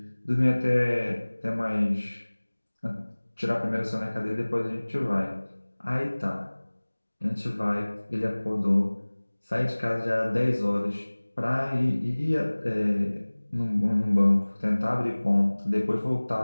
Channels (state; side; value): inverted; both; correlation -1.00